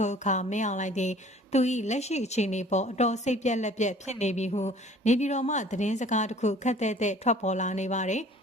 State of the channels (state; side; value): normal; both; correlation 0.51